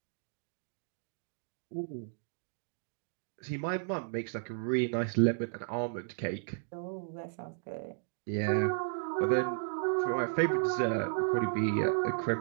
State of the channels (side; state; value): left; silent; digital silence